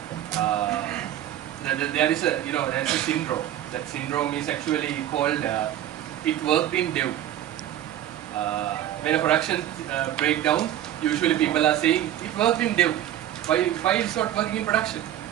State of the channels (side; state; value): left; quieter; 12.2 dB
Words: there is a syndrome. That syndrome is actually called it worked in dev. When a production breakdown, usually people are saying it worked in dev. Why it's not working in production?